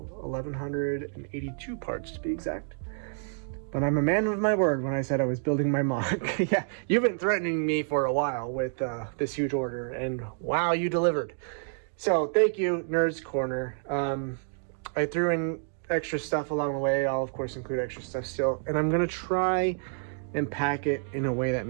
1,182 parts to be exact. But I'm a man of my word when I said I was building my MOC. Yeah, you've been threatening me for a while with this huge order, and wow, you delivered. So thank you, Nerds Corner. I threw in extra stuff along the way. I'll of course include extra stuff still, and I'm gonna try and pack it in a way that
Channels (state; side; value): silent; left; digital silence